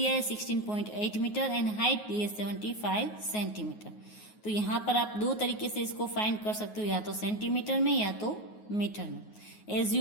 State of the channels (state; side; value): late; right; 9.5 ms